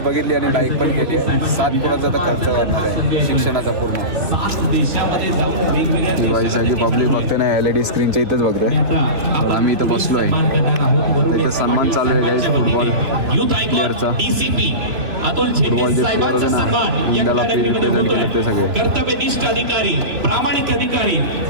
बघितली आणि लाईक पण केली आहे. 7 पोरांचा तर खर्च करणार आहे शिक्षणाचा पूर्ण. ती बाई सगळी पब्लिक बघते ना LED स्क्रीनच्या इथेच बघते. तर आम्ही इथं बसलो आहे. आता इथं सन्मान चालू आहे गाईज फुटबॉल प्लेअरचा. फुटबॉल जे प्लेअर होते ना इंडियाला रिप्रेझेंट केलं ते सगळे. कर्तव्यनिष्ठ अधिकारी, प्रामाणिक अधिकारी,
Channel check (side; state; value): left; late; 3.0 ms